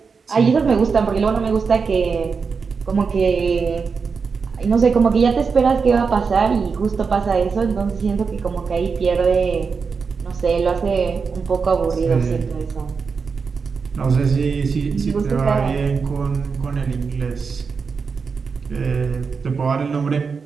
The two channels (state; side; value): quieter; left; 5.3 dB